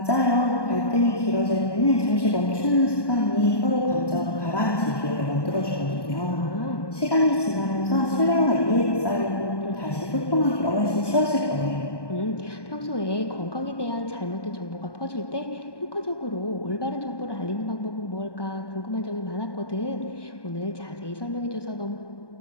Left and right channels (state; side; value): late; right; 1.2 ms